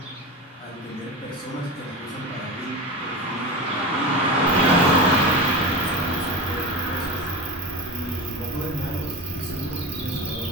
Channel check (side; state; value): both; normal; correlation 0.24